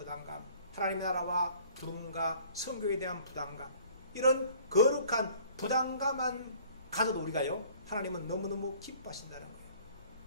하나님의 나라와 부름과 성교에 대한 부담감, 이런 거룩한 부담감만 가져도 우리가요, 하나님은 너무너무 기뻐하신다는 거예요.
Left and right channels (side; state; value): both; inverted; correlation -0.53